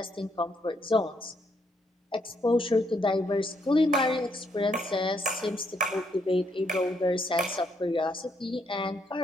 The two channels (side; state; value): both; normal; correlation 0.74